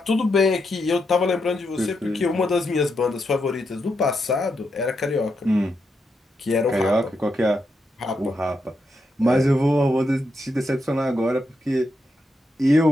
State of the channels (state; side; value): normal; both; correlation 0.83